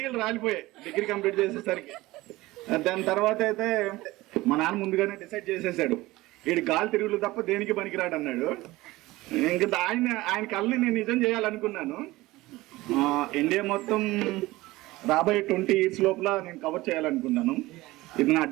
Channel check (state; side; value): quieter; left; 19.1 dB